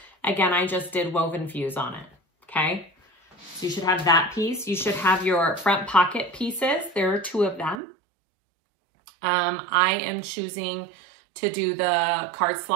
Again, I just did woven fuse on it, okay? So you should have that piece. You should have your front pocket pieces. There are 2 of them. I am choosing to do the card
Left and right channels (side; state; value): left; drops out; at 7.8 s